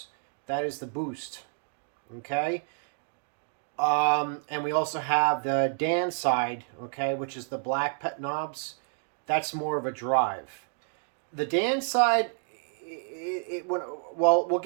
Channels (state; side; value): silent; left; 58 dB below the other